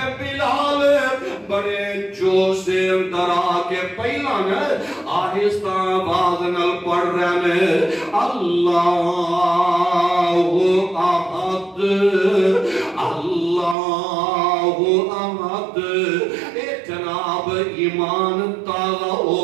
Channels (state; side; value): drops out; left; at 13.8 s